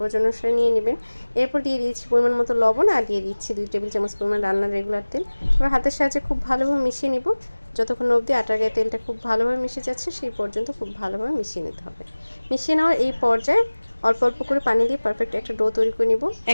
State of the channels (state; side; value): inverted; both; correlation -1.00